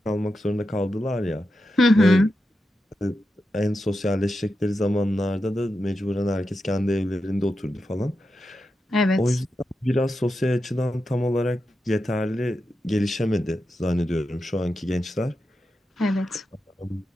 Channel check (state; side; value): normal; both; correlation 0.89